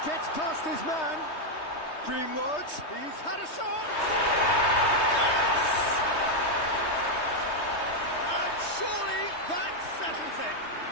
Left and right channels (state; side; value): late; right; 3.2 ms